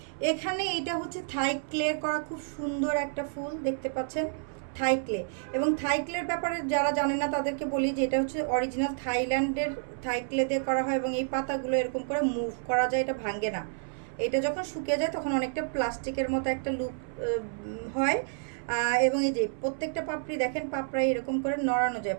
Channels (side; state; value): left; silent; 58 dB below the other